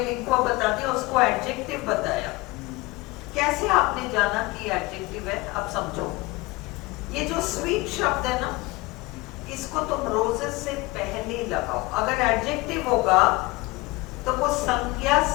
लिंक्वर्ब बता दिया, उसको एडजेक्टिव बताया। कैसे आपने जाना कि एडजेक्टिव है? अब समझो, ये जो स्वीट शब्द है ना, इसको तुम रोजेस से पहले लगाओ। अगर एडजेक्टिव होगा तो वो संज्ञा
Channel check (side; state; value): right; quieter; 22.4 dB